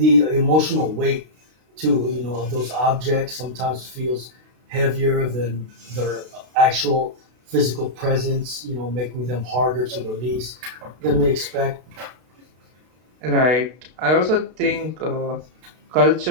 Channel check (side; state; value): left; late; 32 ms